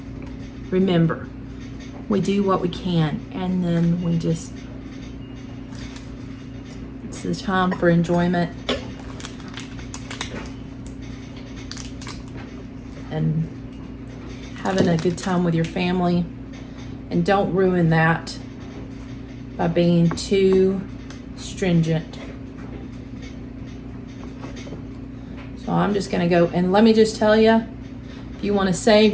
remember, we do what we can, and then we just, it's the time for enjoyment and having a good time with your family. And don't ruin that by being too stringent. So I'm just gonna go, and let me just tell you, if you want to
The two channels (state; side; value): identical; both; correlation 1.00